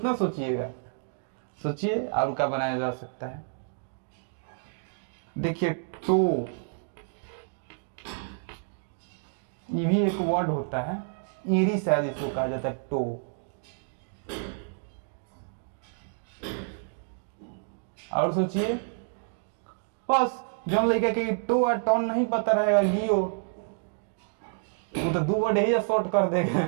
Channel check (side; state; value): left; silent; digital silence